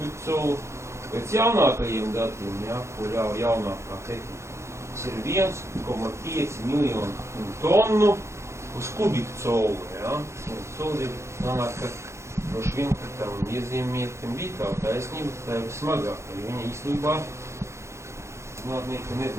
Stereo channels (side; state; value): left; late; 0.13 ms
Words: colu. Pēc jaunākajiem datiem, ja, kur jau jaunākā tehnika, tas ir 1,5 miljonu tonu uz kubiku colu. Ja. Colu ir sanāk, ka droši vien, ka tam iezīmietim bija tā taisnība, ka tā ir smagāka, jo viņa īstenībā zinātnieki